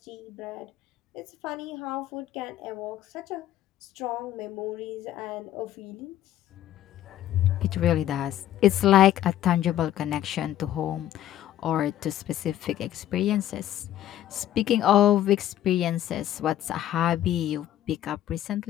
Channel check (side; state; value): right; quieter; 12.4 dB